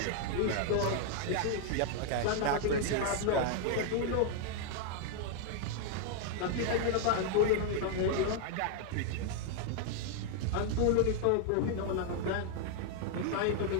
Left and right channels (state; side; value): different; both; correlation 0.00